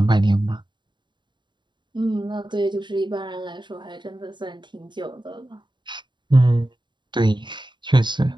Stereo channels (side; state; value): left; late; 0.22 ms